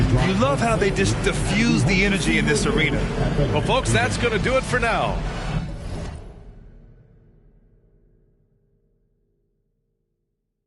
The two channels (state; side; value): identical; both; correlation 1.00